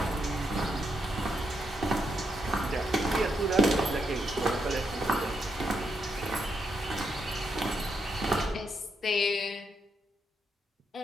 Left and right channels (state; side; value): normal; both; correlation 0.80